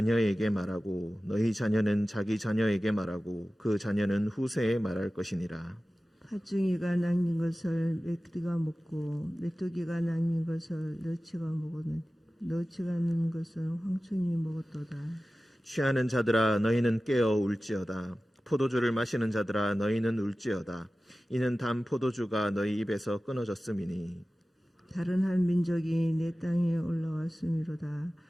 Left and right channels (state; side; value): normal; both; correlation 0.96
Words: 말하고 너희 자녀는 자기 자녀에게 말하고 그 자녀는 후세에 말할 것이니라. 팥중이가 남긴 것을 메뚜기가 먹고 메뚜기가 남긴 것을 너치가 먹었느니 너치가 남긴 것을 황충이 먹었도다. 취하는 자들아 너희는 깨어 울지어다. 포도주를 마시는 자들아 너희는 울지어다. 이는 단 포도주가 너희 입에서 끊어졌음이니. 다른 한 민족이 내 땅에 올라왔음이로다.